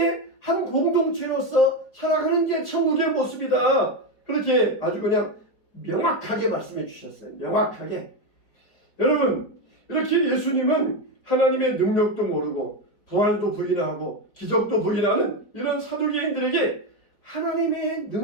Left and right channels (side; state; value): right; late; 4.5 ms